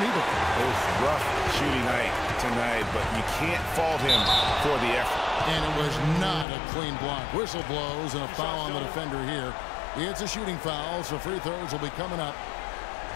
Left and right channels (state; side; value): drops out; right; at 6.5 s